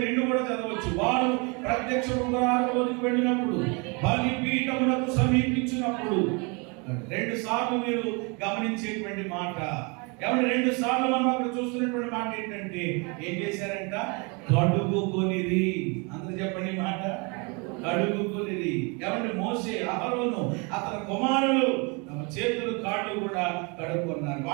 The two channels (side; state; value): left; quieter; 31.2 dB